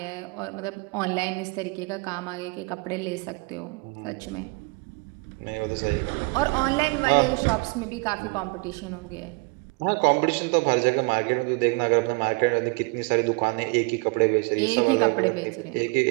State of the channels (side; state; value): left; quieter; 30.1 dB